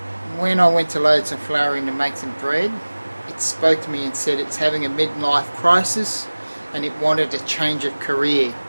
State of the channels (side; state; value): both; inverted; correlation -1.00